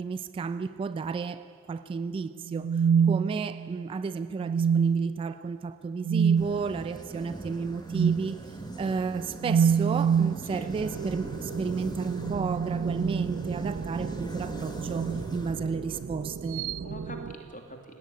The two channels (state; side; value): quieter; left; 5.7 dB